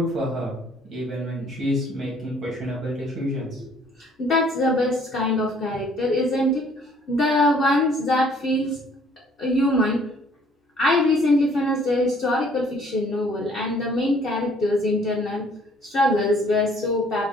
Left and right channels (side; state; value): both; normal; correlation 0.59